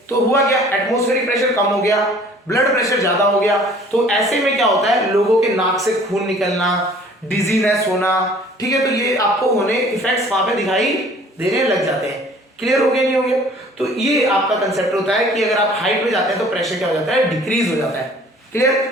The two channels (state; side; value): normal; both; correlation 0.52